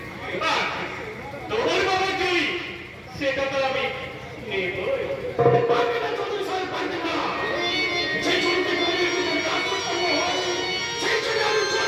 আর তোর বাবার জমি সেটা তো আমি নেবই। পারবে না চৌধুরী সাহেব, পারবে না। যে জমিতে গরিবের উপর রাজত্ব হয়, সেই জমি আমি জোর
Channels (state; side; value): identical; both; correlation 1.00